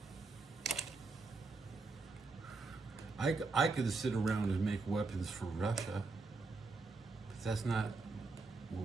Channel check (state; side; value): quieter; left; 3.9 dB